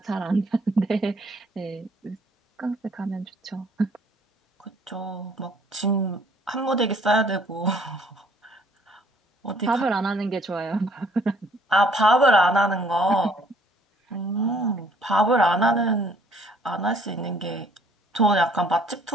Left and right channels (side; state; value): both; normal; correlation 0.61